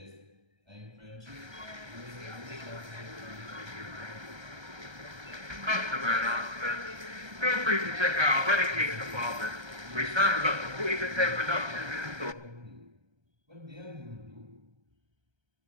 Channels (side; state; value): left; late; 1.3 ms